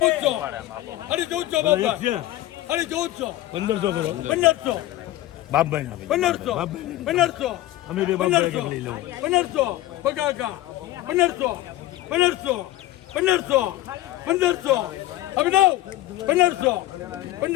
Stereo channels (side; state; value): right; quieter; 15.4 dB